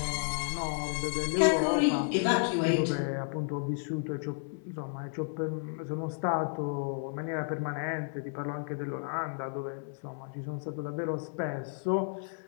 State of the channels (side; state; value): right; silent; 56 dB below the other